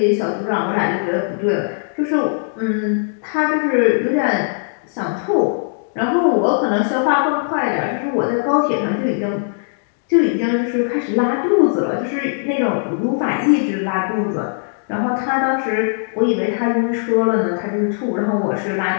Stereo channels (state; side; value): silent; right; digital silence